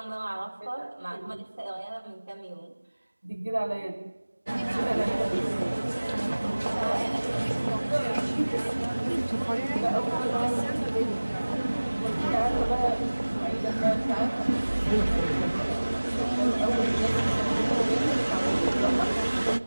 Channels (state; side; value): inverted; both; correlation -1.00